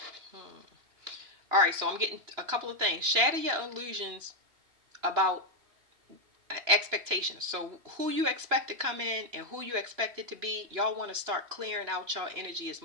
Hmm. All right, so I'm getting a couple of things. Shatter your illusions about expectations. So who you expect to come in and who you expect it to be, y'all want to start clearing out your energy as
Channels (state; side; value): late; left; 2.9 ms